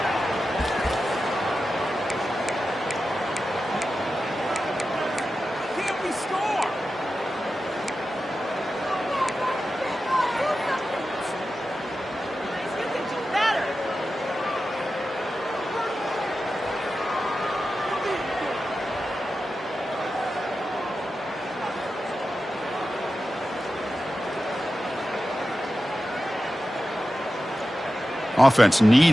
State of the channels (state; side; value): normal; both; correlation 0.92